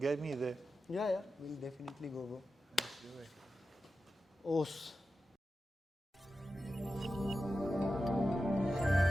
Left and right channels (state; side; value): normal; both; correlation 0.92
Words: me there. Yeah, we'll definitely go, bro. Let's do it. Os.